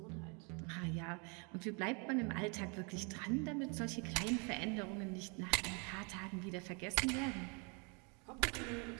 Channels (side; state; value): left; quieter; 33.7 dB